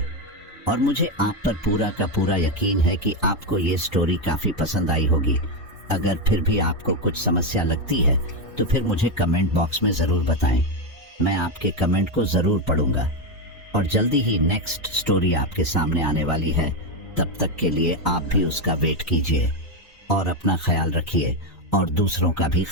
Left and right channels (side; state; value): both; normal; correlation 0.08